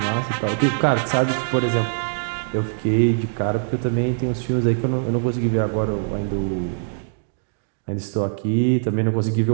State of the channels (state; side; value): silent; left; digital silence